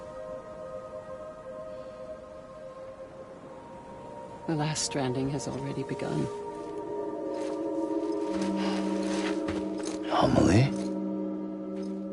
The last stranding has already begun. Amelie?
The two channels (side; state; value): both; identical; correlation 1.00